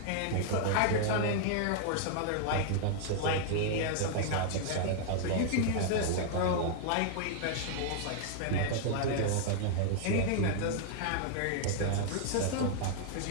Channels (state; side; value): different; both; correlation -0.01